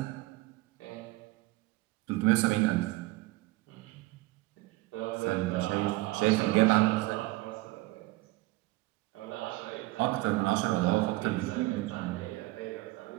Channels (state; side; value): quieter; left; 20.3 dB